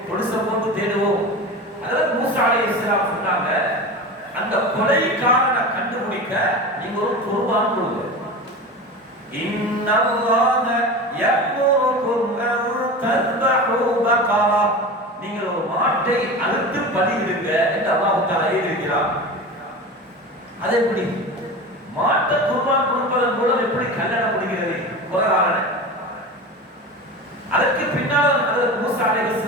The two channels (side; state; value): both; normal; correlation 0.29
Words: பொலிசை போட்டு தேடுவோம். ஹஜ்ரத் மூசா அலைஹிஸ்ஸலாம் சொன்னாங்க, அந்த கொலைக்காரனை கண்டுபிடிக்க நீங்க ஒரு குர்பான் கொடுங்க. இன்னல்லாஹ யஅமுருக்கும் அன் தذبحு பகரா, நீங்கள் ஒரு மாட்டை அறுத்து பலியிடுங்க என்று அல்லாஹ் தஆலா ஏவியிருக்கிறார். அது எப்படி மாட்டை குர்பான் கொடுப்பதன் மூலம் எப்படி கல்யாணம் முடிகிறது? குர்ஆனில் அதற்கு பின்னால் மூசா